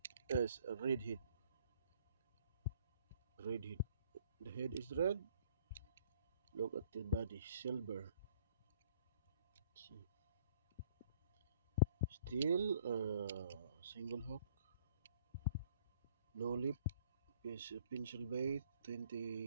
as a redhead. The head is red. Look at the body, silver. See. Still single hook, no lip, is a pencil bait,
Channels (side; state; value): both; inverted; correlation -0.58